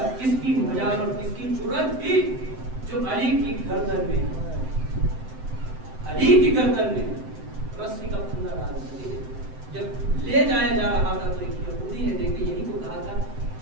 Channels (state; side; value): late; left; 7.8 ms